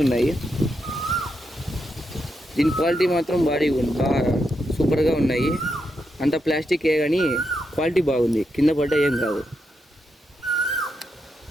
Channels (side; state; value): both; normal; correlation 0.83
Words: ఉన్నాయి. దీని క్వాలిటీ మాత్రం బాగా సూపర్గా ఉన్నాయి. అంత ప్లాస్టికే కానీ క్వాలిటీ బాగుంది, కింద పడ్డ ఏం కాదు.